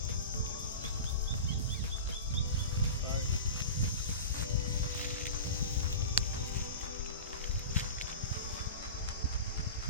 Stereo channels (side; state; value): both; inverted; correlation -0.31